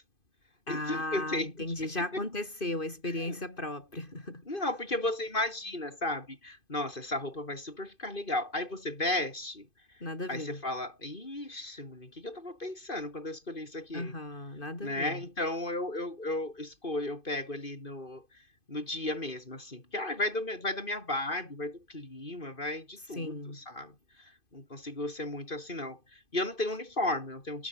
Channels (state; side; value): late; right; 2.5 ms